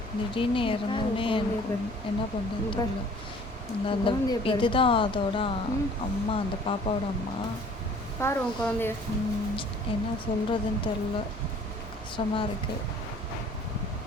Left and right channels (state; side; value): normal; both; correlation 0.53